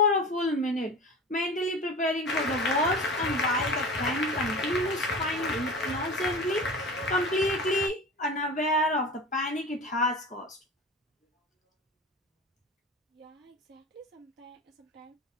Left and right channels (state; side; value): normal; both; correlation 0.34